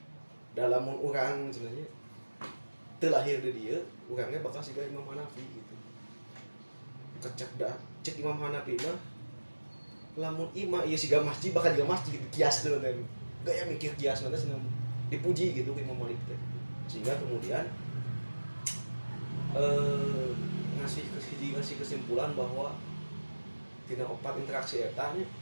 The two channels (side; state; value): both; inverted; correlation -1.00